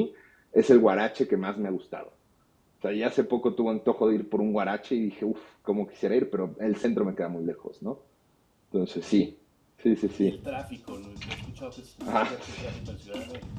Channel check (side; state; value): both; identical; correlation 1.00